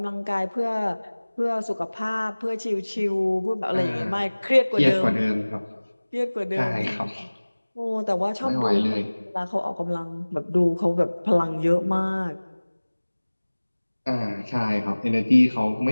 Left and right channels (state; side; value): inverted; both; correlation -1.00